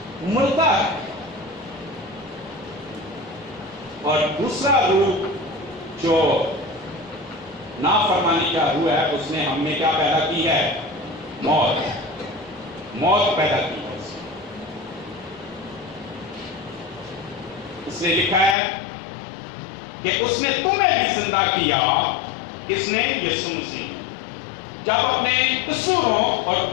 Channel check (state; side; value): drops out; right; at 18.6 s